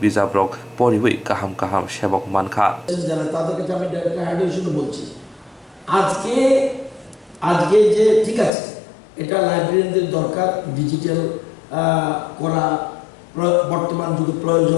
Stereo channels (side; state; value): right; drops out; at 8.5 s